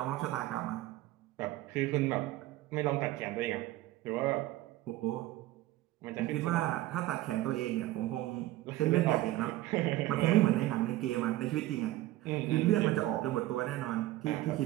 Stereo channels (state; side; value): quieter; left; 16.2 dB